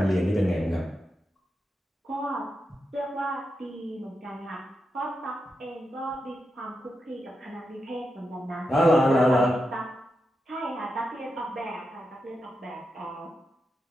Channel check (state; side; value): normal; both; correlation 0.87